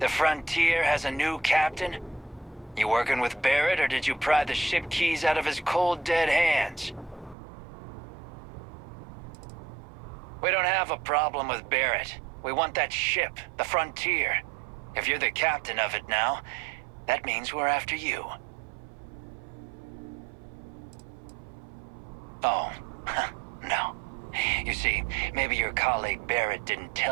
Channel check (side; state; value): left; drops out; at 7.4 s